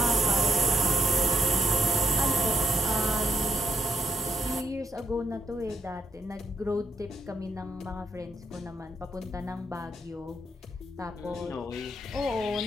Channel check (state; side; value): normal; both; correlation 0.73